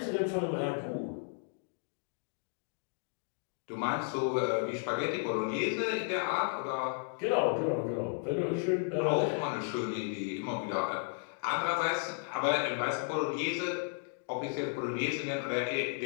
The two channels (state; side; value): silent; right; 55 dB below the other